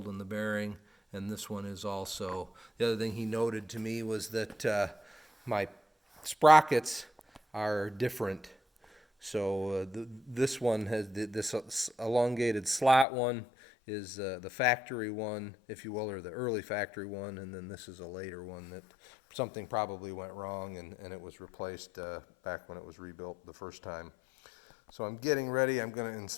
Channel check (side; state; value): right; drops out; at 13.1 s